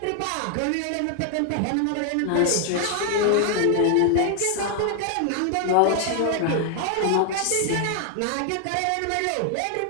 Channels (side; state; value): both; different; correlation 0.00